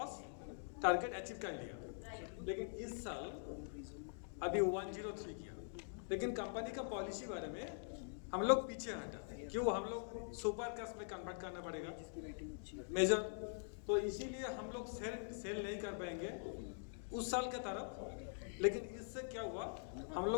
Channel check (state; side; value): silent; right; digital silence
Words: टारगेट अचीव कर लिया, लेकिन इस साल अभी 103 किया। लेकिन कंपनी का पॉलिसी बारे में हम लोग पीछे हटा, क्यों? हम लोग सुपर कास्ट में कन्वर्ट करना पड़ेगा मेजर, तो इसीलिए हम लोग सेल नहीं कर पाएंगे उस साल के तरफ। लेकिन इससे क्या हुआ, हम